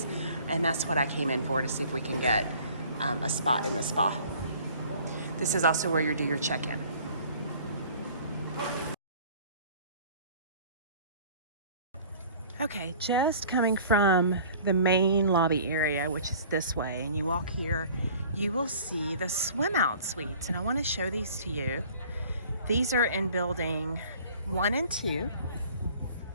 And that's what I came in for, to see if we can get a spot in the spa. This is also where you do your check-in. Okay, just coming from the main lobby area, which is this way, and you walk here, you will see the swim out suites, and I want to show these to you. These are in building 1 and 2,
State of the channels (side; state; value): both; inverted; correlation -0.50